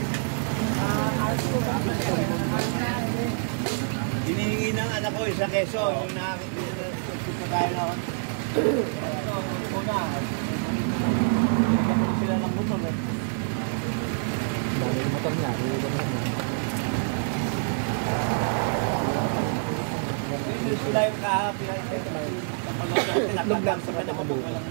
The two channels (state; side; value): silent; left; digital silence